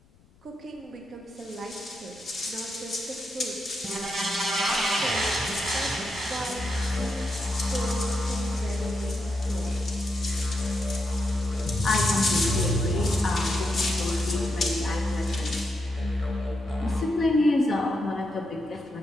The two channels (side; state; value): left; noise; rumble, 30 dB below the sound